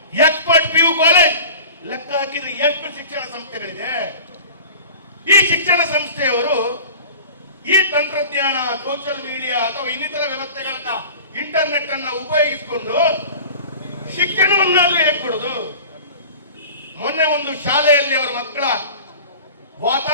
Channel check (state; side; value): inverted; both; correlation -0.39